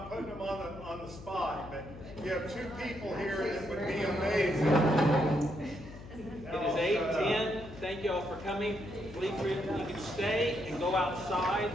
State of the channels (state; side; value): noise; left; hum, 15 dB below the sound